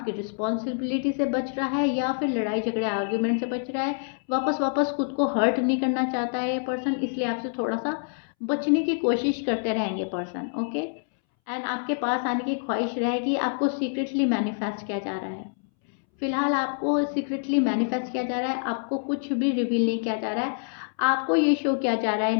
रिस्पॉन्सिबिलिटी से बच रहा है, या फिर लड़ाई झगड़े आर्ग्यूमेंट से बच रहा है। वापस वापस खुद को हर्ट नहीं करना चाहता है ये पर्सन, इसलिए आपसे थोड़ा सा बचने की कोशिश करते रहेंगे पर्सन। ओके, एंड आपके पास आने की ख्वाहिश रहेगी। आपको सीक्रेटली मैनिफेस्ट किया जा रहा है। फिलहाल आपको सीक्रेटली मैनिफेस्ट किया जा रहा है, आपको कुछ भी रिवील नहीं किया जा रहा है। आपको ये शो किया जा रहा है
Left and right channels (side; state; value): right; silent; 61 dB below the other